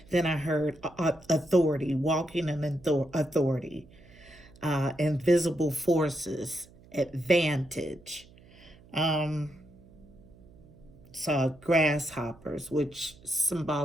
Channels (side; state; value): right; noise; hum, 24 dB below the sound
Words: Then I heard authority, walking in authority, invisible forces, advantage. Saw grasshoppers, which